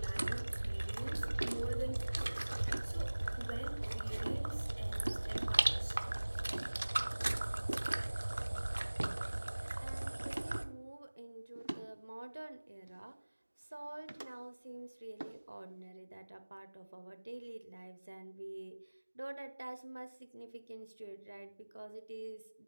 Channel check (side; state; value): both; inverted; correlation -1.00